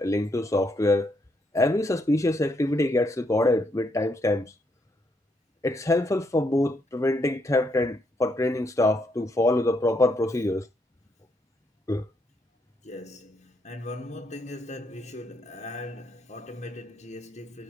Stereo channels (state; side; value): normal; both; correlation 0.75